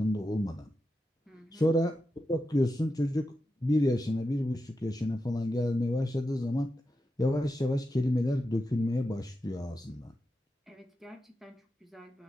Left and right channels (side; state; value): both; normal; correlation 0.89